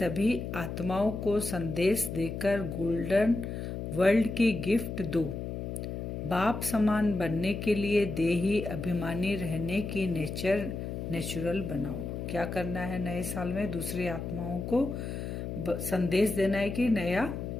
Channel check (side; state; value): left; noise; hum, 5 dB below the sound